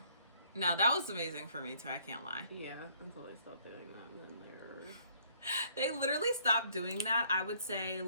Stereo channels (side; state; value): both; inverted; correlation -0.63